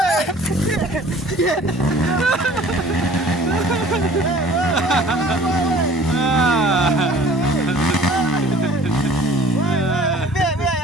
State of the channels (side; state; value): both; normal; correlation 0.49